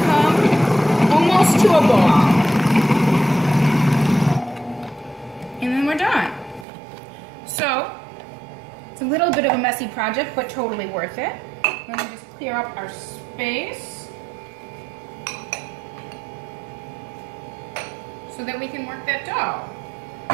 come almost to a ball. And then we're done. So, it's a little bit of a messy project, but totally worth it. We're gonna just clear up our space so that we can work that dough.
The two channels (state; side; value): drops out; left; at 6.7 s